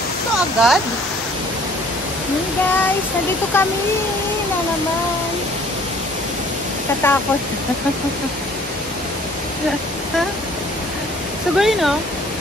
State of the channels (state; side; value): normal; both; correlation 0.55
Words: ito agad. Hey guys, nandito kami na naman. Katakot. Sugay no?